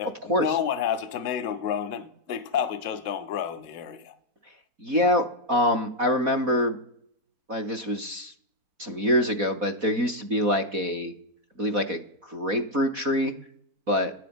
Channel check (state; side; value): late; left; 4.1 ms